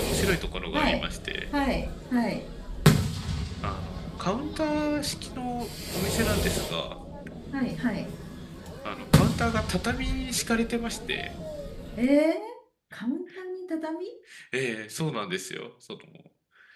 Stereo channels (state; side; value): identical; both; correlation 1.00